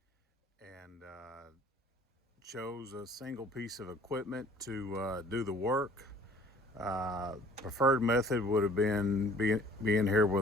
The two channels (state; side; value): normal; both; correlation 0.52